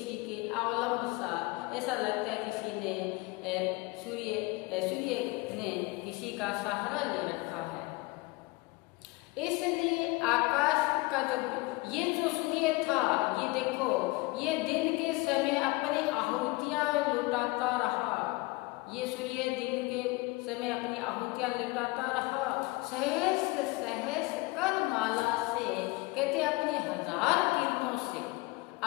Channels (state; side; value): quieter; right; 23.0 dB